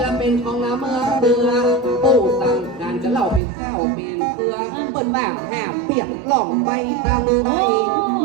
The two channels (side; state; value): left; drops out; at 3.4 s